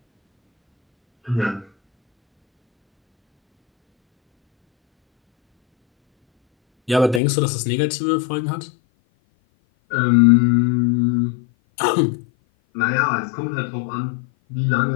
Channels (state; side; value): drops out; right; at 7.2 s